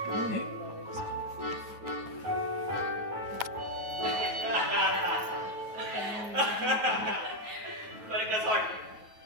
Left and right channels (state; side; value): late; left; 9.2 ms